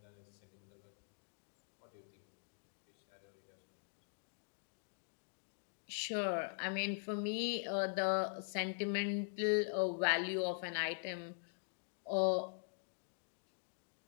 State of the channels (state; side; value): silent; right; digital silence